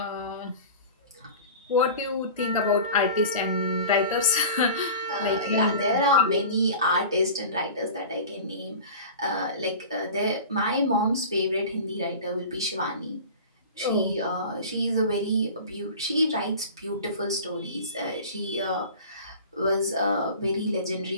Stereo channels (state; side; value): inverted; both; correlation -0.36